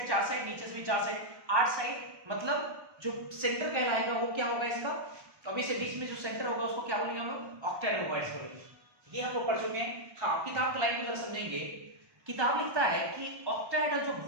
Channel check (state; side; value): late; left; 1.2 ms